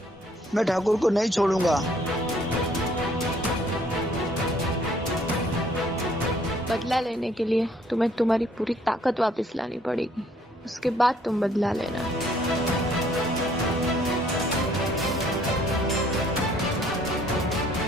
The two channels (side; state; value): both; normal; correlation 0.62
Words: मैं ठाकुर को नहीं छोड़ूंगा। बदला लेने के लिए तुम्हें तुम्हारी पूरी ताकत वापस लानी पड़ेगी, उसके बाद तुम बदला लेना।